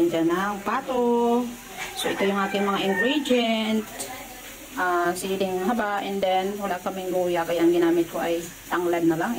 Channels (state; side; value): identical; both; correlation 1.00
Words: dyan ng pato? So, ito yung aking mga ingredient. Siling haba, and then wala kaming luya, kaya ang ginamit ko ay tanglad na lang,